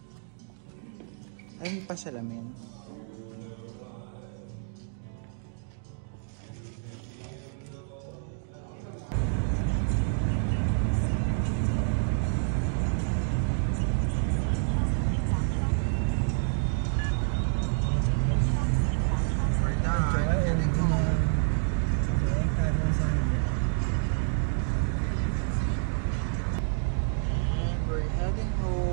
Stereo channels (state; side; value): silent; left; digital silence